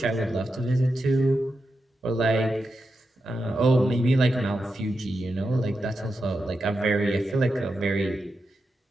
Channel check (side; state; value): both; normal; correlation 0.88